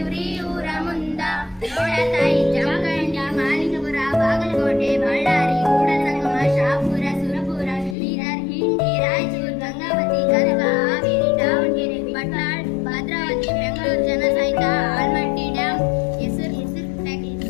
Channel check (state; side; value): drops out; right; at 8.0 s